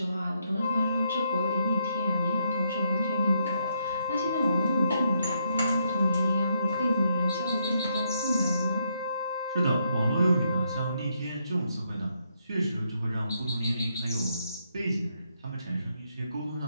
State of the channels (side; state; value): both; inverted; correlation -0.77